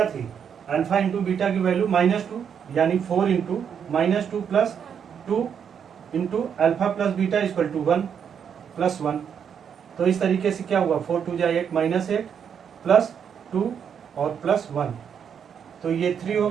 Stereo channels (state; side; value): quieter; left; 7.7 dB